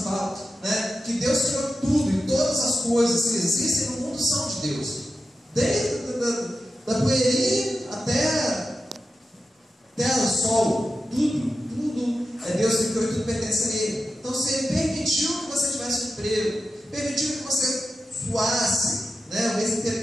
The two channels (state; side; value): normal; both; correlation 0.91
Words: falam, né, que Deus criou tudo, e todas as coisas que existem no mundo são de Deus, desde da poeirinha até o sol, tudo é Deus que criou e tudo pertence a Ele. Então, se Ele permitiu que você tivesse um emprego, permitiu que você suasse, né, o mês